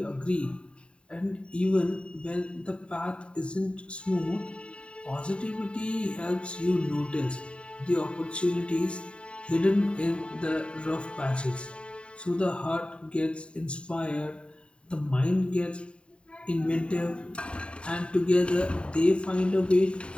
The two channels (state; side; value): late; right; 0.055 ms